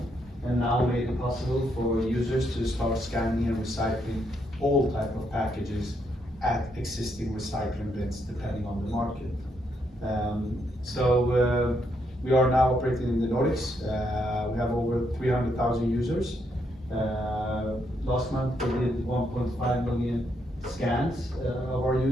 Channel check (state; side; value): normal; both; correlation 0.76